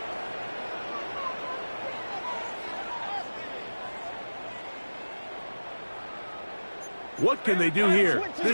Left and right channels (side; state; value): both; inverted; correlation -1.00